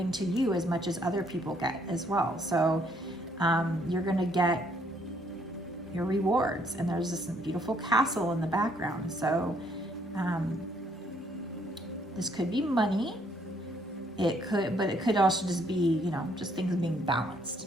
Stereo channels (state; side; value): normal; both; correlation 0.67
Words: to you as much as other people get as well. So you're going to get your rewards, and there's this beautiful castle in the background. So this could be money, but it could also just be, you know, just things being